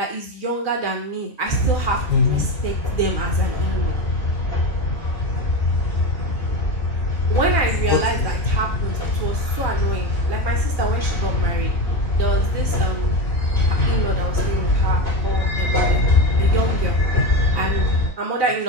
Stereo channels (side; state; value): right; late; 2.4 ms